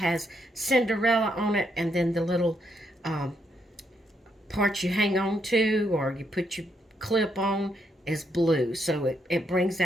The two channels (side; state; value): both; normal; correlation 0.77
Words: Cinderella on it. And then the little part you hang on to, or you put your clip on, is blue. So it brings